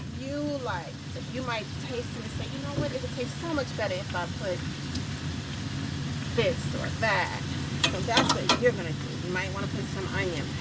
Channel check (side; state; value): both; identical; correlation 1.00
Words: you like, that you might taste and say, you know what, it would taste so much better if I put this or that. So that's what you're going to do. You might want to put some onion